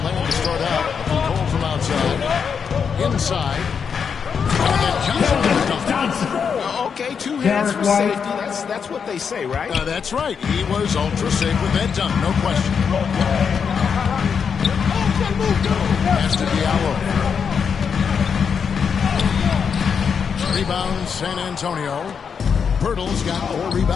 land to start out. Goal from outside. Inside. And then Johnson. Okay, 2 hands for safety. That's what they say, right? That's right. He was ultra safe with that dunk, no question. Pass to Diallo. Rebound, San Antonio. Pirtle's got 4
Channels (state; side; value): quieter; right; 6.5 dB